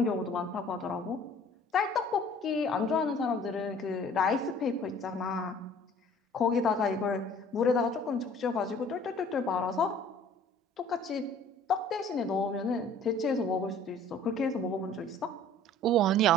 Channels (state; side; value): normal; both; correlation 0.51